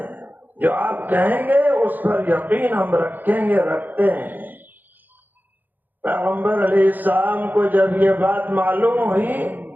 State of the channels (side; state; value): left; late; 0.086 ms